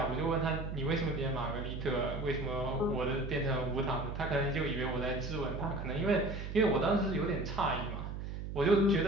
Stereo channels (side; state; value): right; noise; hum, 6 dB below the sound